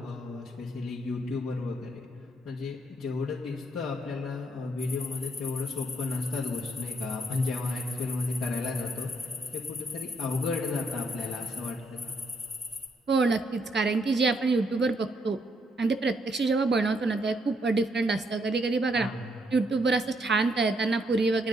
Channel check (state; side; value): normal; both; correlation 0.73